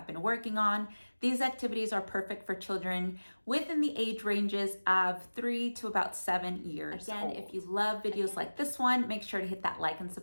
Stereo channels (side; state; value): both; inverted; correlation -1.00